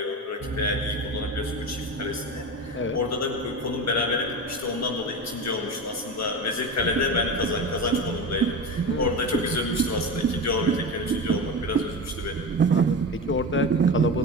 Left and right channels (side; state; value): both; normal; correlation 0.25